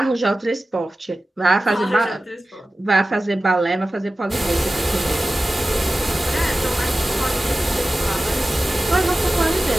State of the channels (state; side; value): normal; both; correlation 0.95